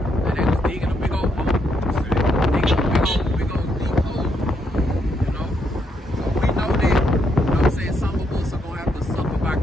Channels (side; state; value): both; normal; correlation 0.76